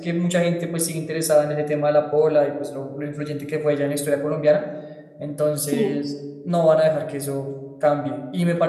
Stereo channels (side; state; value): both; identical; correlation 1.00